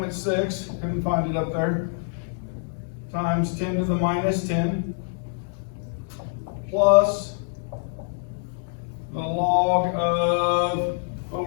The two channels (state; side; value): silent; right; digital silence